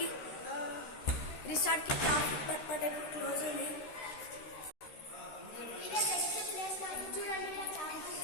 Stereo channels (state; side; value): late; right; 13 ms